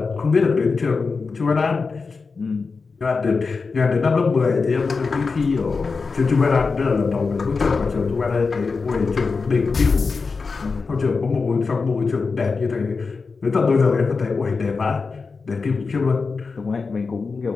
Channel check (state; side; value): quieter; right; 4.6 dB